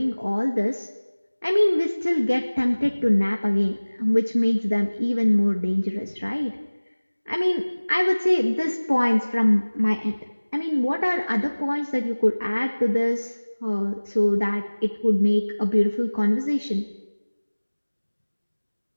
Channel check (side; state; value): both; inverted; correlation -1.00